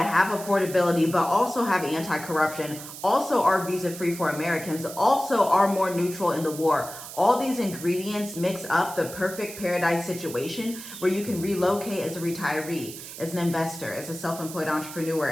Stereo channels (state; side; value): noise; right; hiss, 12 dB below the sound